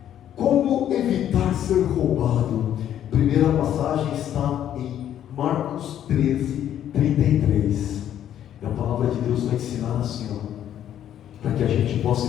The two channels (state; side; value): quieter; right; 10.7 dB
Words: Como evitar ser roubado? Primeira passagem está em Marcos 13:33. E a palavra de Deus vai ensinar assim, ó: para que a gente